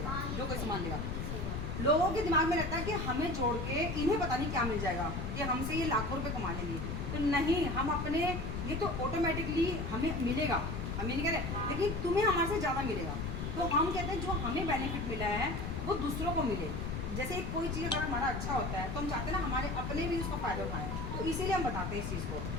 जो कोई सामान लेगा। लोगों के दिमाग में रहता है कि हमें जोड़ के इन्हें पता नहीं क्या मिल जाएगा, कि हमसे ये लाखों रुपए कमा लेंगे। तो नहीं, हम अपने, ये तो ऑटोमेटिकली हमें मिलेगा, हम ये नहीं कह रहे, लेकिन तुम्हें हमारे से ज़्यादा मिलेगा। तो हम कहते हैं जो हमें बेनिफिट मिला है वो दूसरों को मिले। जैसे कोई चीज़ अगर हमारा अच्छा होता है तो हम चाहते हैं ना हमारे अपने भी उसका फ़ायदा उठाएं, तो इसीलिए हम बताते हैं इस चीज़ को।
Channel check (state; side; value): noise; left; rumble, 3 dB below the sound